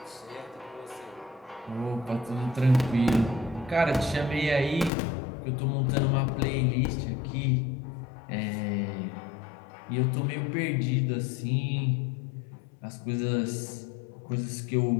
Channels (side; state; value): right; drops out; at 4.9 s